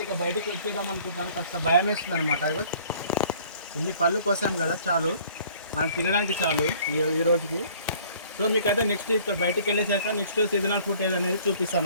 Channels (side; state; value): both; inverted; correlation -0.54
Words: ఇక బయటికి వచ్చేద్దాం అనుకుంటున్నాను. కాస్త భయం వేస్తుంది అనమాట. ఇన్ని పళ్ళు కోసాం కదా, చాలు మనం తినడానికి చాలు ఈ రోజుకి. సో మీకైతే నెక్స్ట్ ఇక్కడ బయటికి వెళ్ళేసాక నెక్స్ట్ సీజనల్ ఫ్రూట్ ఏదనేది